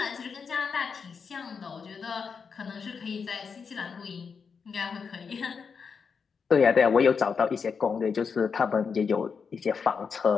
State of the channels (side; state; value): right; quieter; 5.8 dB